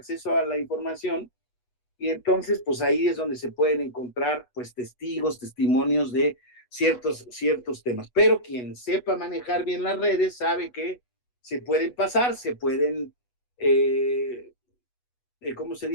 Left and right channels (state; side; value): late; right; 8.2 ms